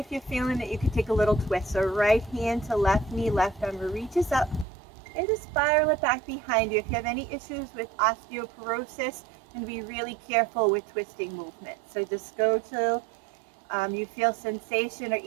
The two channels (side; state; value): left; drops out; at 4.7 s